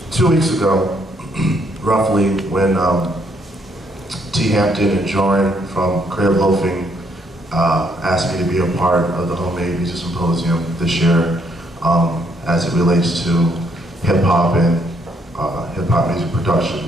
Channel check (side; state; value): both; normal; correlation 0.71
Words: 2 weeks ago, roughly, when T. Hampton and Joran from Creative Loafing asked me to be a part of the Homemade Music Symposium this year as it relates to hip-hop and hip-hop music